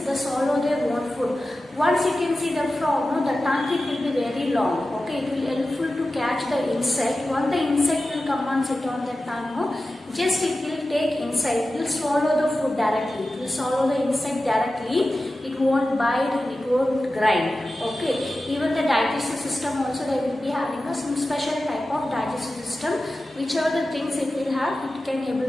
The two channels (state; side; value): normal; both; correlation 0.94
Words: that swallow their own food. Once you can see the frog, no, the tongue it will be very long. Okay, it will helpful to catch the insect. Once the insect will come and sit on the tongue, no, just it will take inside. It will swallow the food directly. It will swallow the insect directly. It won't bite and it won't grind. Okay, even the digestive system also they will be having some special type of digestive system. Whichever the things it will have, it can